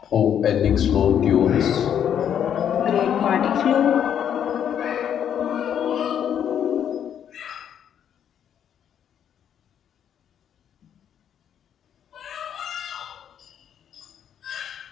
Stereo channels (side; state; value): right; quieter; 9.1 dB